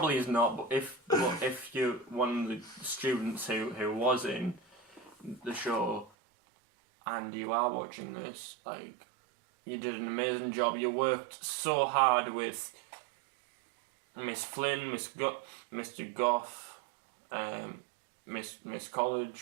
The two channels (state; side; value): drops out; left; at 6.1 s